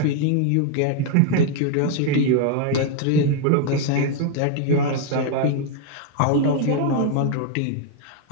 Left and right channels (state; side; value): different; both; correlation 0.00